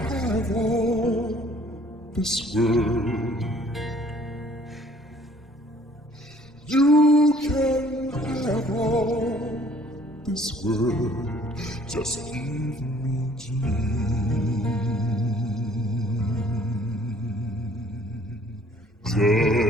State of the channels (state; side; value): normal; both; correlation 0.57